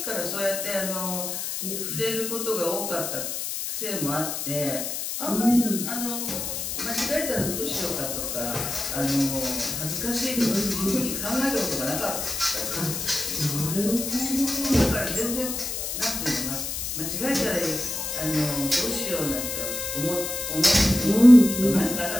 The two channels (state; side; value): noise; left; hiss, 4 dB below the sound